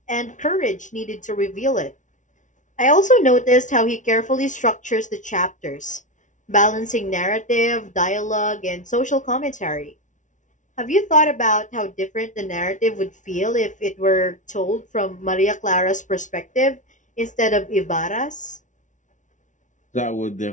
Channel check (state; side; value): late; right; 0.37 ms